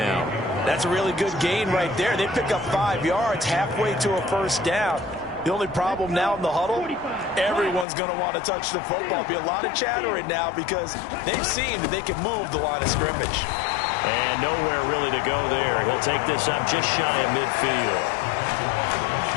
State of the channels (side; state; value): right; drops out; at 7.9 s